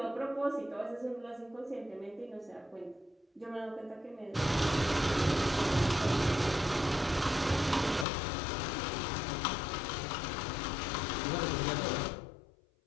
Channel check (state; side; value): drops out; right; at 8.1 s